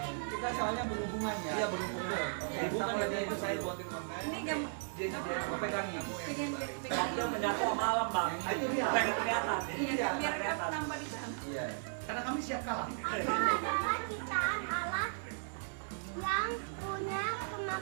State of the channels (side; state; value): left; silent; 54 dB below the other